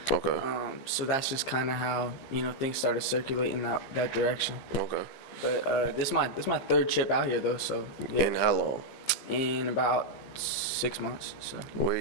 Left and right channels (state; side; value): late; right; 15 ms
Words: Okay. So that's just kind of how, things started circulating that direction. Okay. But this is my third trip out here, though, so. Yeah. In how long? In about 6 months, so. Where